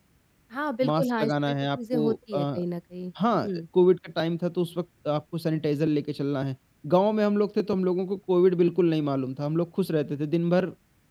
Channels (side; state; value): both; identical; correlation 1.00